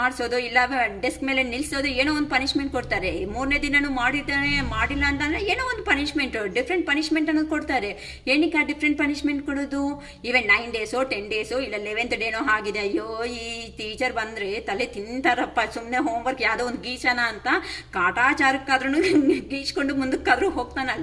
ಮಾಡಿಸೋದು ಇಲ್ಲ ಡೆಸ್ಕ್ ಮೇಲೆ ನಿಲ್ಲಿಸೋದು, ಏನೋ ಒಂದು ಪನಿಷ್ಮೆಂಟ್ ಕೊಡ್ತಾರೆ. 3ನೇ ದಿನನೂ ಮಾಡಿಲ್ಲ ಅಂತಂದ್ರೆ ಏನೋ ಒಂದು ಪನಿಷ್ಮೆಂಟ್, ಡಿಫ್ರೆಂಟ್ ಪನಿಷ್ಮೆಂಟ್ ಅನ್ನೋದು ಕೊಡ್ತಾರೆ. ಏನಕ್ಕೆ ಆ ಡಿಫ್ರೆಂಟ್ ಪನಿಷ್ಮೆಂಟ್ ಕೊಡೋದು? ಈವನ್ 9 ಡೇಸೋ 10 ಡೇಸೋ ಇಲ್ಲ 11th ಡೇನೋ ಆಗಿದೆ. ಅಯ್ಯೋ ಈ ಟೀಚರ್ ಬಂದ್ರೆ ತಲೆ ತಿಂತಾರಪ್ಪ, ಸುಮ್ಮನೆ ಹೋಮ್ವರ್ಕ್ ಯಾವುದೋ ಒಂದು ಗೀಚನ ಅಂತ ಕಾಟಾಚಾರಕ್ಕಾದ್ರೂ ಗೀಚ್ಕೊಂಡು ಮುಂದಕ್ಕಾದ್ರೂ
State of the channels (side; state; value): both; identical; correlation 1.00